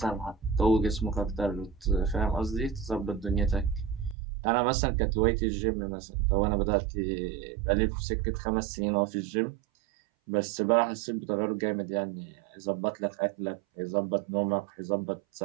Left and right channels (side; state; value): left; drops out; at 4.2 s